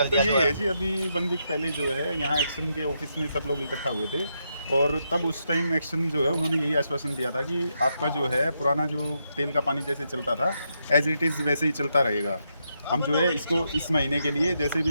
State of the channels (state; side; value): inverted; both; correlation -0.81